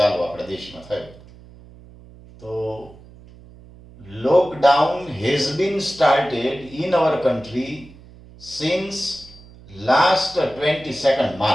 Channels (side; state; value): right; noise; hum, 21 dB below the sound